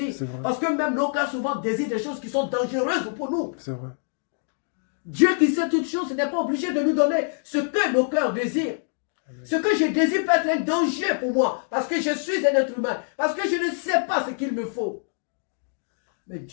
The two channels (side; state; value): right; silent; digital silence